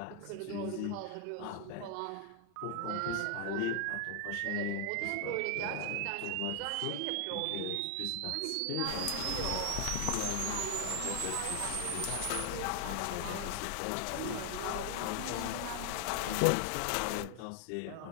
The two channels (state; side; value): different; both; correlation 0.00